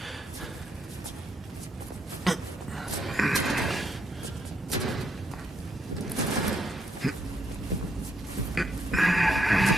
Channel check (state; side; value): normal; both; correlation 0.76